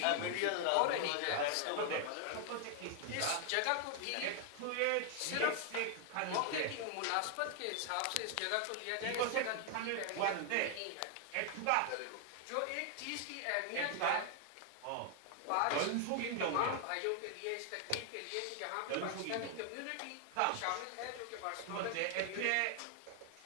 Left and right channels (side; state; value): both; different; correlation 0.00